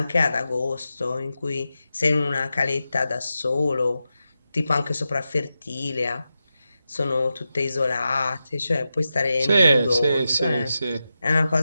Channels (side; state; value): both; inverted; correlation -0.91